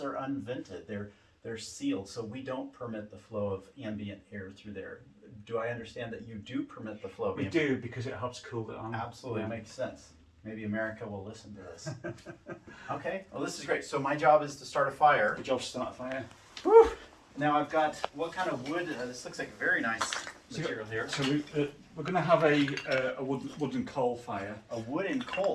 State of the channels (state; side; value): identical; both; correlation 1.00